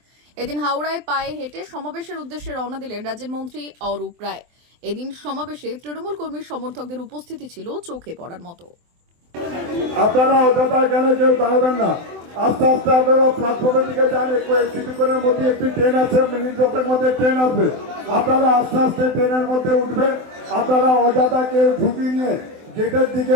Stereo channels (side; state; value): left; late; 24 ms